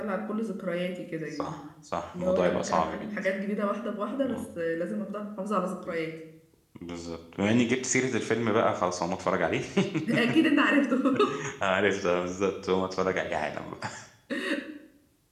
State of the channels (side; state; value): both; identical; correlation 1.00